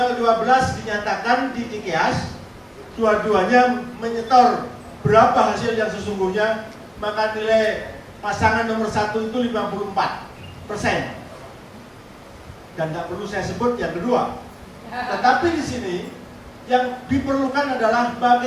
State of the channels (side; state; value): both; identical; correlation 1.00